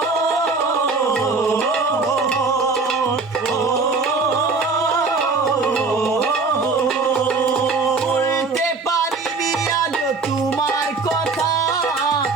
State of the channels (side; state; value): left; quieter; 4.1 dB